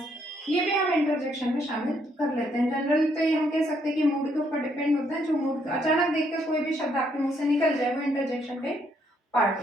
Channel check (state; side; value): normal; both; correlation 0.72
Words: ये भी हम इंटरजेक्शन में शामिल कर लेते हैं। जनरली तो ये हम कह सकते हैं कि मूड के ऊपर डिपेंड होता है, जो मूड अचानक देखकर कोई भी शब्द आपके मुंह से निकल जाए वो इंटरजेक्शन के पार्ट